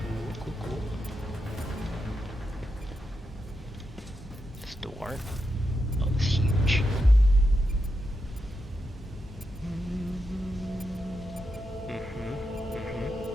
cool, cool. This door. Oh, it's huge.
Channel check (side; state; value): both; normal; correlation 0.86